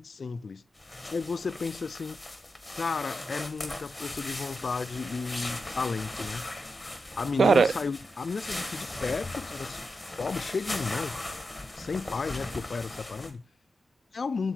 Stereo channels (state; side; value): normal; both; correlation 0.87